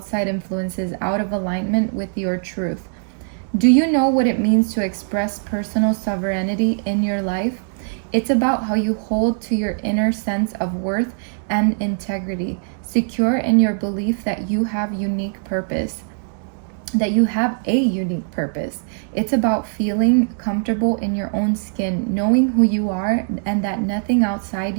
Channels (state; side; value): silent; left; digital silence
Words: influences out of alignment with your truth. Do you know what it means to express personal sovereignty in your life? It's about how you hold to your inner sense of worth and integrity, secure in your belief that you have unique purpose, that you have a unique purpose. It's about feeling comfortable in your own skin, knowing who you are and that nothing outside